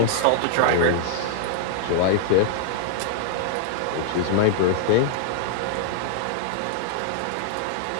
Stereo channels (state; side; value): different; both; correlation -0.01